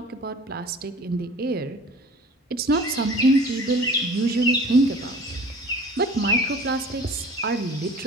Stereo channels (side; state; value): both; normal; correlation 0.44